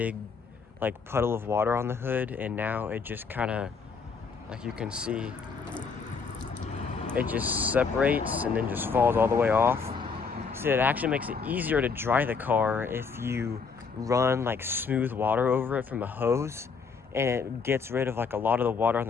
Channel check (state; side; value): quieter; right; 5.3 dB